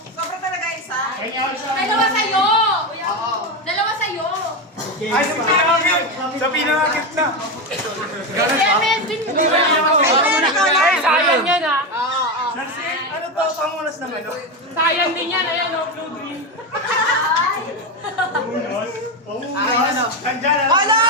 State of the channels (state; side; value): normal; both; correlation 0.13